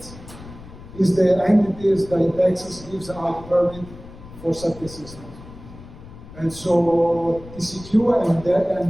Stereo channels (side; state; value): left; noise; rumble, 17 dB below the sound